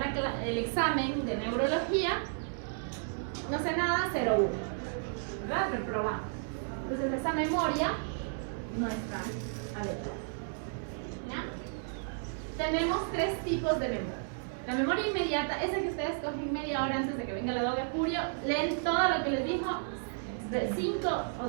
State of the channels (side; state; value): left; silent; digital silence